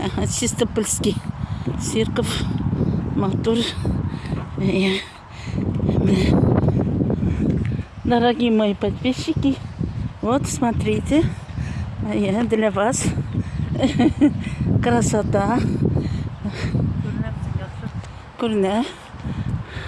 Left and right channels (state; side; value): identical; both; correlation 1.00